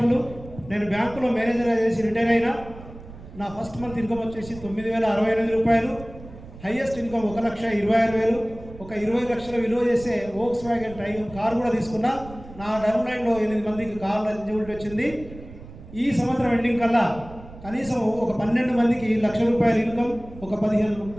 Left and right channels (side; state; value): right; noise; rumble, 17 dB below the sound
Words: నేను బ్యాంకులో మేనేజర్ చేసి రిటైర్ అయినా. నా ఫస్ట్ మంత్ ఇన్కమ్ వచ్చేసి 9,068 రూపాయలు, హైయెస్ట్ ఇన్కమ్ 1,26,000. ఒక 20 లక్షల విలువ చేసే వోక్స్ వ్యాగన్ టైగర్ కార్ కూడా తీసుకున్నా. నా డౌన్ లైన్లో 8 మందికి కార్లు ఎలిజిబిలిటీ వచ్చింది. ఈ సంవత్సరం ఎండింగ్ కల్లా కనీసం ఒక 12 మందికి 1,00,000 రూపాయల ఇన్కమ్, ఒక 15